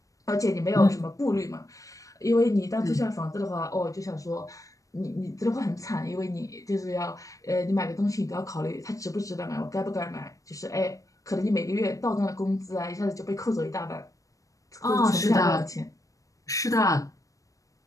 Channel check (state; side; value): late; right; 0.16 ms